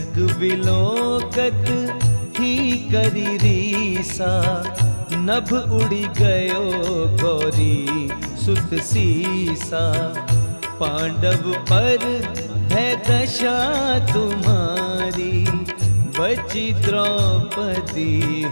विलोकत ही करी रीसा, नभ उड़ी गयो गौरी सुत सीसा। पांडव पर है दशा तुम्हारी, बची द्रौपदी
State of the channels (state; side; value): inverted; both; correlation -1.00